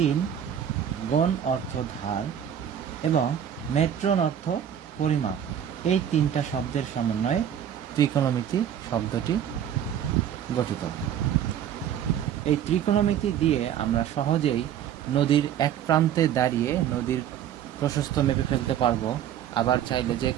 গণ অর্থ ধার এবং মেট্রন অর্থ পরিমাপ, এই তিনটা শব্দের সমন্বয়ে ত্রিকোণমিতি শব্দটি গঠিত। এই ত্রিকোণমিতি দিয়ে আমরা সহজেই নদীর এক প্রান্তে দাঁড়িয়ে নদীর প্রশস্ত মেপে ফেলতে পারবো। আবার চাইলে যে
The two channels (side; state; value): left; quieter; 9.7 dB